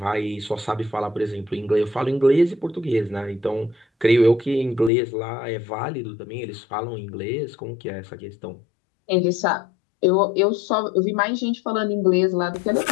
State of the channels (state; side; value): drops out; right; at 4.9 s